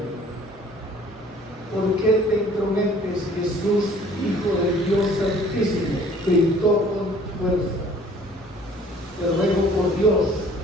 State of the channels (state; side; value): normal; both; correlation 0.54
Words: ¿Por qué te entrometes, Jesús, Hijo del Dios Altísimo? Gritó con fuerza. Te ruego por Dios